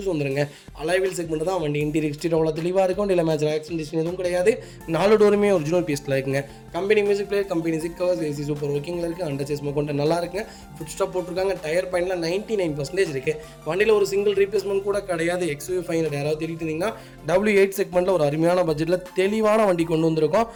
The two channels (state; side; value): identical; both; correlation 1.00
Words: வந்துருங்க. அலைவில் செக்மெண்ட் தான். வண்டி இன்டீரியர் எக்ஸ்டீரியர் அவ்வளோ தெளிவாக இருக்கும். இல்லை மேட்ச் ஆக்சிடென்ட் எதுவும் கிடையாது. 4 டோருமே ஒரிஜினல் பீஸில் இருக்குங்க. Company music player, company seat covers, AC super ஒர்க்கிங்கில் இருக்குது. அண்டர் சேஸ் கொண்டு நல்லா இருக்குங்க. ஃபுட் ஸ்டாப் போட்டிருக்காங்க. டயர் பாயிண்ட்ல 99% இருக்கு. வண்டியில் ஒரு சிங்கிள் ரீப்ளேஸ்மெண்ட் கூட கிடையாது. XUV 500 யாராவது தேடிட்டு இருந்தீங்கன்னா W8 செக்மெண்ட்ல ஒரு அருமையான பட்ஜெட்டில் தெளிவான வண்டி கொண்டு வந்திருக்கோம்.